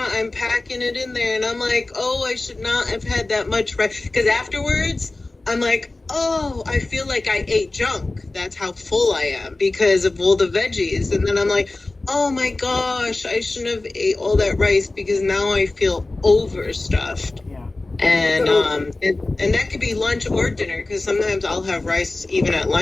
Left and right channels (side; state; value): right; quieter; 3.1 dB